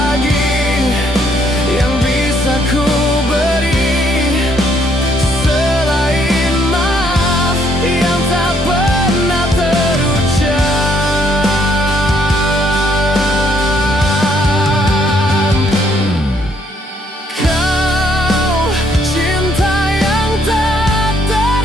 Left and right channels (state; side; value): normal; both; correlation 0.68